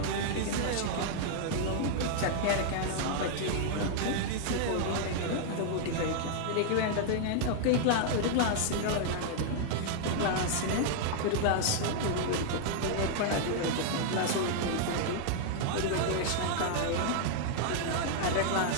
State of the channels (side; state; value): both; different; correlation -0.01